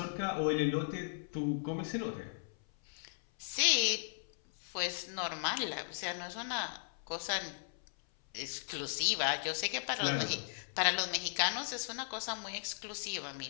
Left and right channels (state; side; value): silent; right; 53 dB below the other